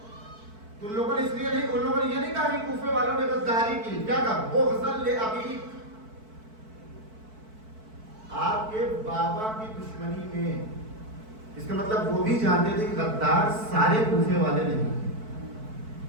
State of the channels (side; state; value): left; late; 4.6 ms